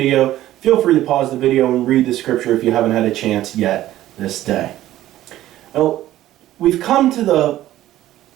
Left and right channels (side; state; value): left; quieter; 14.2 dB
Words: Feel free to pause the video and read the scripture if you haven't had a chance yet this day. Now, we've come to the